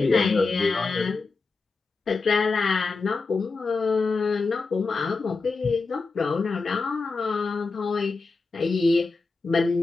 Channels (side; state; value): right; quieter; 4.1 dB